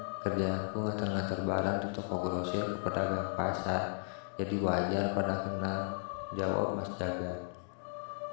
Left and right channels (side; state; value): right; silent; digital silence